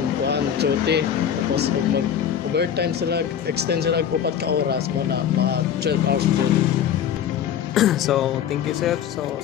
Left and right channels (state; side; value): quieter; right; 9.0 dB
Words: kuan duty tapos ug mag overtime sila extend sila og 4 ka oras mo na mga 12 hours jud. So thank you sir, so